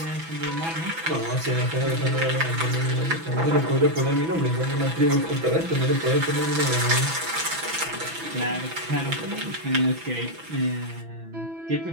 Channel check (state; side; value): late; left; 6.1 ms